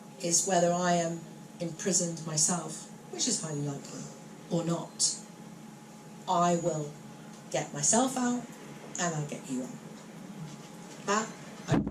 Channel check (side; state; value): both; identical; correlation 1.00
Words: is whether I am imprisoned myself, which is highly likely, or not, I will get myself out and I'll get you out. That I